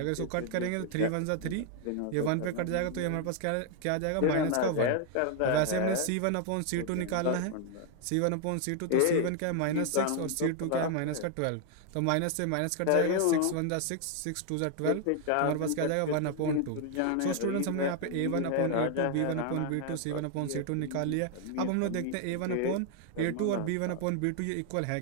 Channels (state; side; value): different; both; correlation 0.00